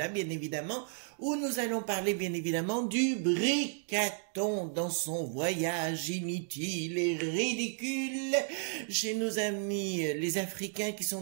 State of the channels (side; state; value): left; silent; 56 dB below the other